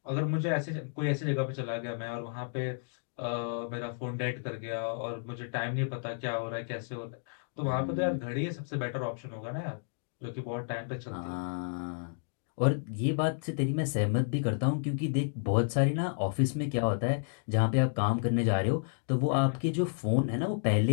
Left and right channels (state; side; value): silent; right; digital silence